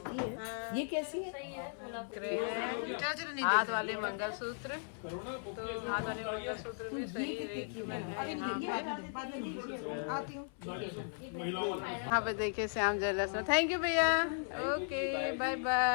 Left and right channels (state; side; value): silent; right; 53 dB below the other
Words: है। ये कैसी है? चलो चलो नहीं हाथ वाले मंगलसूत्र, तो हाथ वाले मंगलसूत्र भी सही रेट में है। यहाँ पे देखिए श्याम ज्वेलर्स में। थैंक यू भैया, ओके बाय